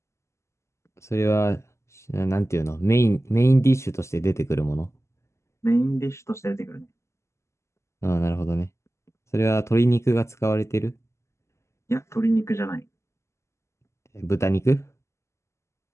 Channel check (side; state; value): right; late; 0.13 ms